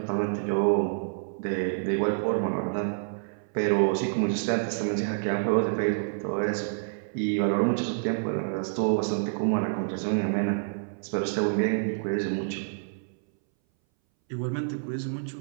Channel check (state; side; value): silent; left; 59 dB below the other